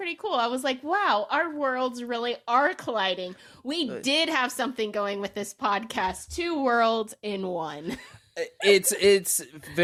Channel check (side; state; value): both; identical; correlation 1.00